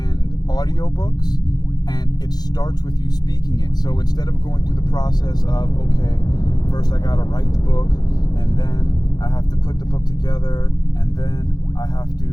audiobooks, and it starts with you speaking it. So instead of going through the process of, okay, first I gotta write the book, and then I have to put the book together, and then I have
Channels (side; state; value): right; late; 0.19 ms